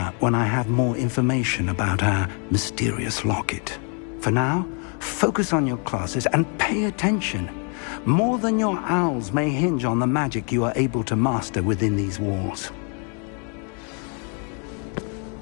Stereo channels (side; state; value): right; quieter; 38.9 dB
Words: when I have more information about our mysterious locket. For now, focus on your classes and pay attention. More than your owls may hinge on the magic you are able to master within these walls.